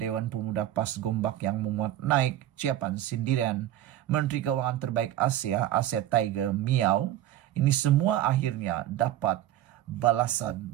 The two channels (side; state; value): left; quieter; 13.0 dB